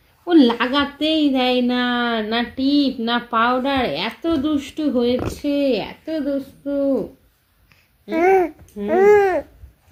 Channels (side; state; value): both; identical; correlation 1.00